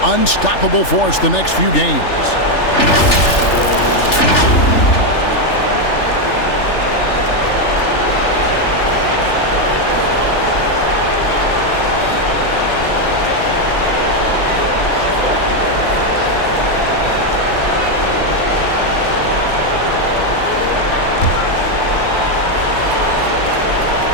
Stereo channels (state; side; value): late; right; 3.4 ms